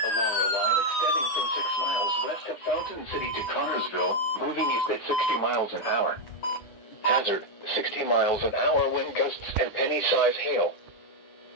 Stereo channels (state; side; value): late; right; 9.9 ms